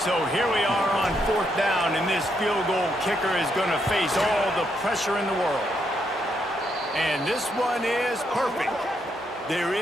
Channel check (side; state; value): both; normal; correlation 0.77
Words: here we are on fourth down, and this field goal kicker is going to face all the pressure in the world. And this one is perfect. There